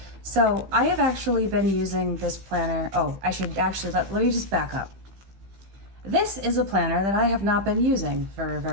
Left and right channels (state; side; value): late; left; 15 ms